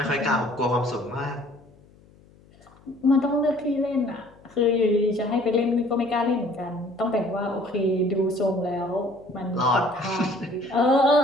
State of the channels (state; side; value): noise; left; hum, 27 dB below the sound